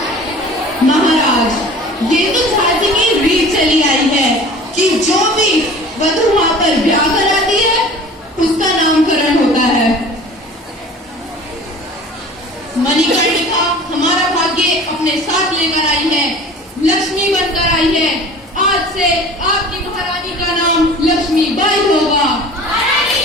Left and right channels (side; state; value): both; normal; correlation 0.43